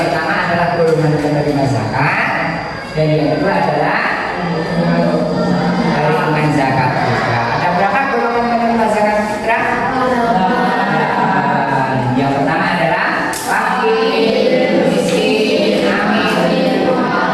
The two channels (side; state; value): both; identical; correlation 1.00